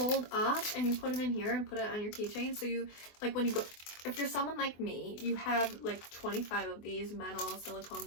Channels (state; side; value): late; right; 24 ms